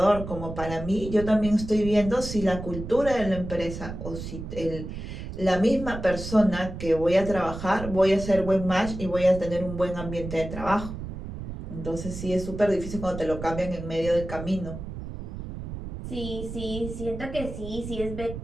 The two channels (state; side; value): noise; right; rumble, 9 dB below the sound